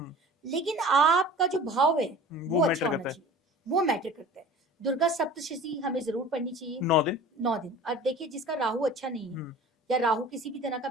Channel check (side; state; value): both; normal; correlation 0.41